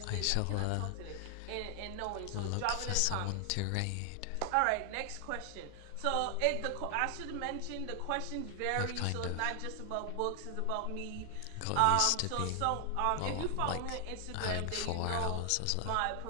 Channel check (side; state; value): both; different; correlation 0.00